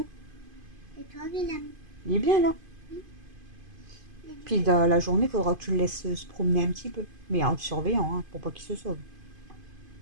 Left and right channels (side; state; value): left; late; 2.5 ms